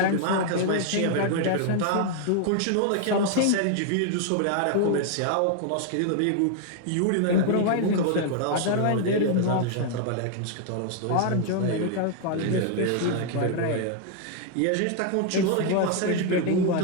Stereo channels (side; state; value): both; different; correlation 0.00